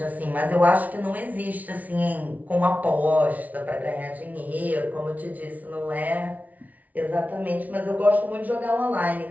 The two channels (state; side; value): late; left; 0.073 ms